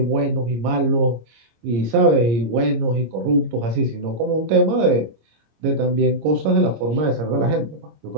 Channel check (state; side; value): late; left; 26 ms